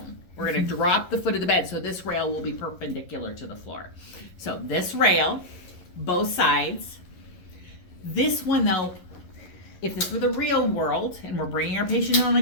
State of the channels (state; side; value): late; right; 11 ms